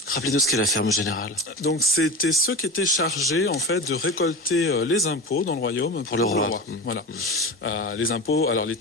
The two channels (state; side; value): normal; both; correlation 0.27